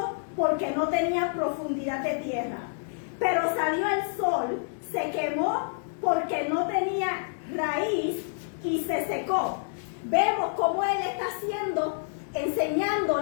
porque no tenía profundidad de tierra. Pero salió el sol, se quemó porque no tenía raíz y se secó. Vemos cómo él está haciendo,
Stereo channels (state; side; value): silent; right; digital silence